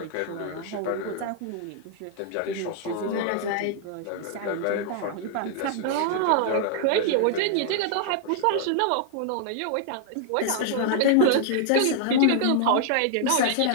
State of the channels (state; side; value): different; both; correlation 0.00